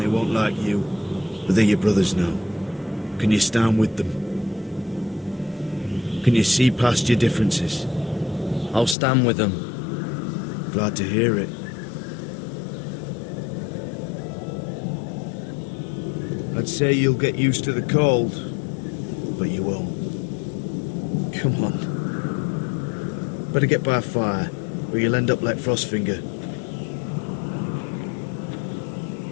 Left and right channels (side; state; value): right; drops out; at 9.0 s